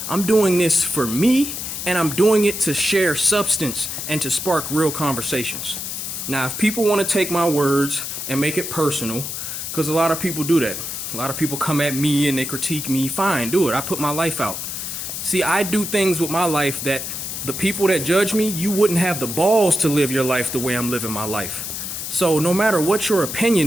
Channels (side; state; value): left; noise; hiss, 6 dB below the sound